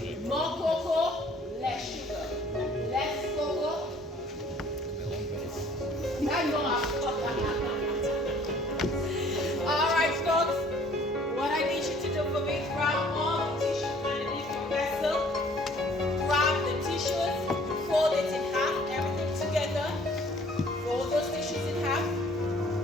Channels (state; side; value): normal; both; correlation 0.55